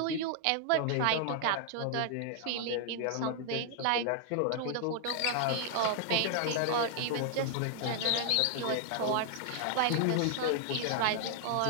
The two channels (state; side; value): different; both; correlation 0.00